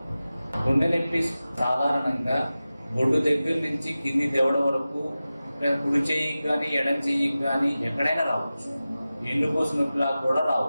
గుండె నొప్పి సాధారణంగా బొడ్డు దగ్గర నుంచి కింది దవడ వరకు కుడి చెయ్యికి కానీ ఎడం చెయ్యికి కానీ ఎక్కడైనా రావచ్చు. ఎన్నుపూస నొప్పిలా కూడా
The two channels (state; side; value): inverted; both; correlation -0.95